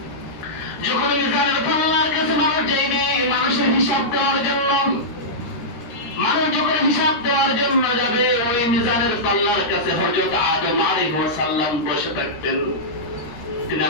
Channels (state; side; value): late; right; 13 ms